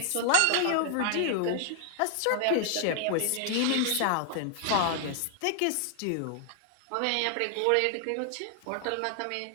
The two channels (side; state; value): both; different; correlation 0.00